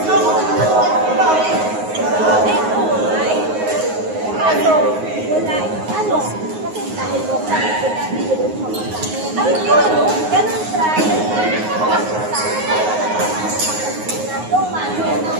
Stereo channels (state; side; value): late; left; 9.5 ms